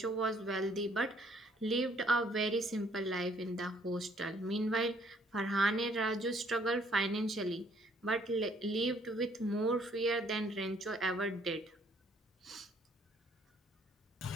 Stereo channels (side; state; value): both; normal; correlation 0.63